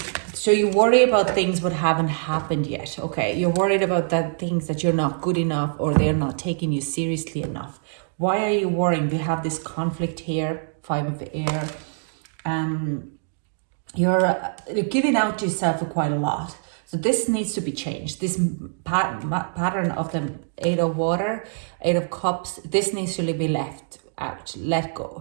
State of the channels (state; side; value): silent; left; digital silence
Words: So you worry about things that haven't happened yet. Okay, you're worried about that things that you're not good enough, or they're not taking you seriously enough. Why are you worrying? We have this conflict here, 5 of Air. You're giving out to yourself for quite a lot. So this needs to be changed. This pattern of the 8 of Water, 8 of Cups, this needs to be left out, let